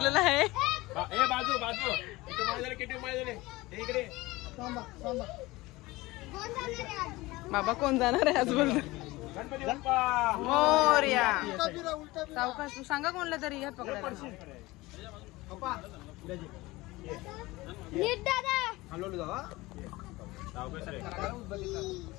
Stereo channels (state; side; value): quieter; right; 20.5 dB